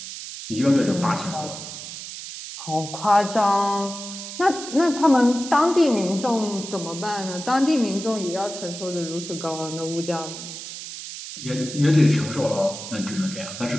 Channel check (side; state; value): right; noise; hiss, 10 dB below the sound